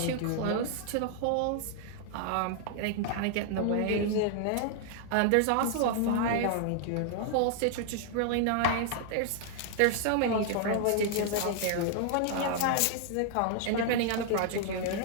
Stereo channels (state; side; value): different; both; correlation 0.00